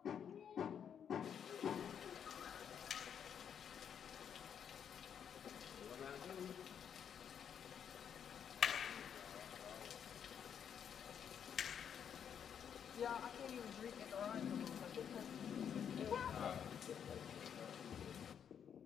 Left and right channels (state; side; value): quieter; right; 8.2 dB